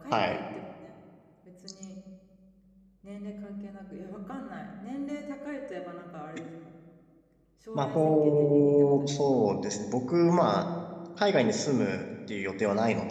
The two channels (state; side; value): identical; both; correlation 1.00